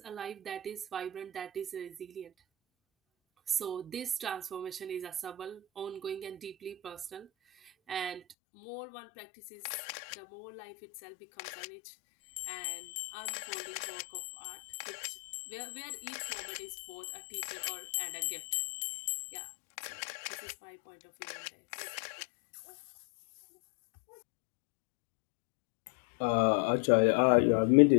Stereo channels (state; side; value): drops out; right; at 8.3 s